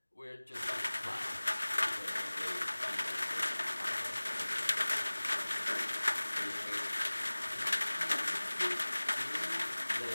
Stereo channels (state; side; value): inverted; both; correlation -1.00